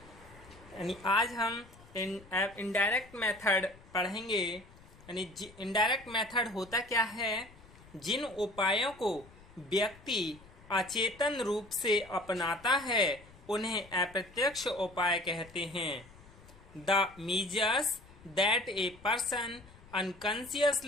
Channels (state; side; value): noise; left; rumble, 22 dB below the sound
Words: यानी आज हम इनडायरेक्ट मेथड पढ़ेंगे। यानी इनडायरेक्ट मेथड होता क्या है? जिन उपायों को व्यक्ति अचेतन रूप से अपनाता है उन्हें अप्रत्यक्ष उपाय कहते हैं। The measures that a person